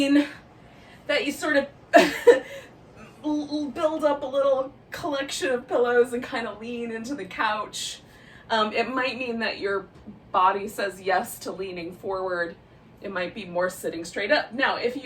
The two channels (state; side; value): identical; both; correlation 1.00